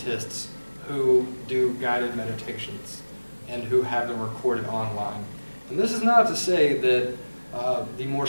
who do guided meditations and who have them recorded online. And this is not to say that the more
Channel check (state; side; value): inverted; both; correlation -1.00